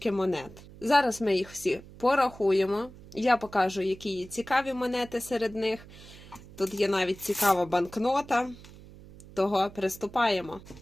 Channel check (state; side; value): noise; right; hum, 19 dB below the sound